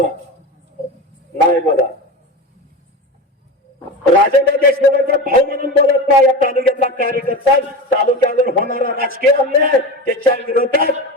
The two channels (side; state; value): both; normal; correlation 0.25